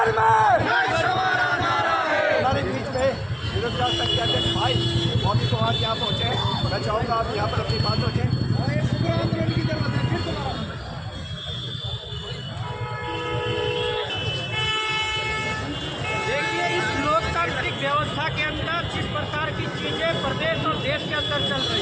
में हमारे बीच में विरोध संख्या के भाई मौके को आज यहाँ पहुँचे। मैं चाहूँगा आप यहाँ पर अपनी बात रखें। देखिए, इस लोकतांत्रिक व्यवस्था के अंदर जिस प्रकार की चीजें प्रदेश और देश के अंदर चल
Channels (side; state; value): both; identical; correlation 1.00